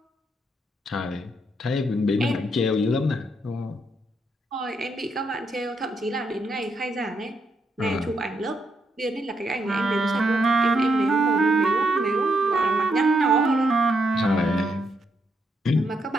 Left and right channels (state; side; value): normal; both; correlation 0.78